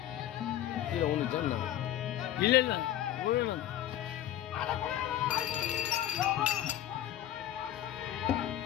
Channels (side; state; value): right; quieter; 12.0 dB